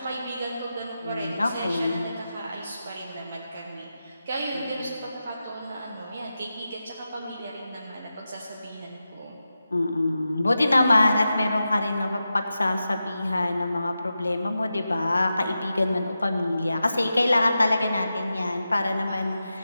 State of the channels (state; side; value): inverted; both; correlation -0.91